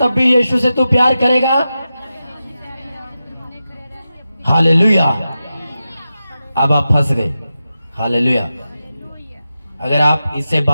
भी यीशु से तू प्यार करेगा? हालेलुया। अब आप फंस गए। हालेलुया। अगर आप इससे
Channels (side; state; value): both; inverted; correlation -0.91